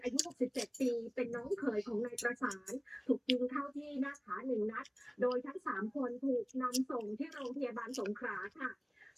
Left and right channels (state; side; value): identical; both; correlation 1.00